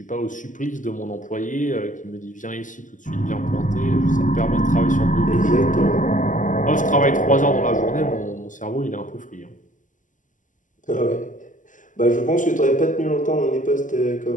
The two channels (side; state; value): right; late; 0.37 ms